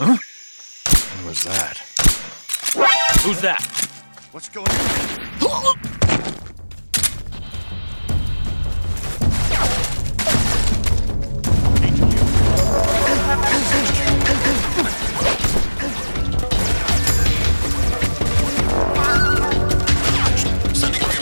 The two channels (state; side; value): inverted; both; correlation -1.00